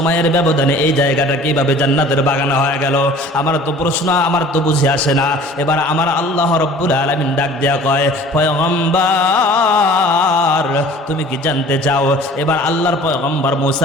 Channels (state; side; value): normal; both; correlation 0.47